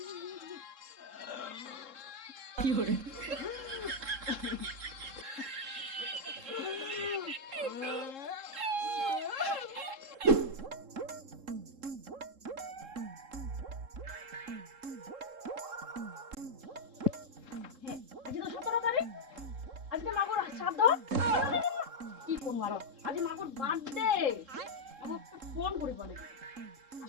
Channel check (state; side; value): late; left; 3.7 ms